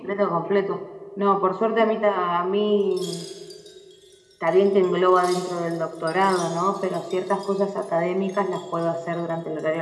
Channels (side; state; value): both; identical; correlation 1.00